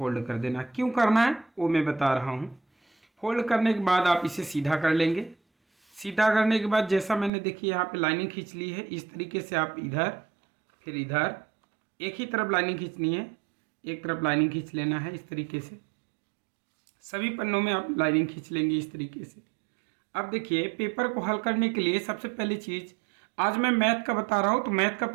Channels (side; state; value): left; drops out; at 7.3 s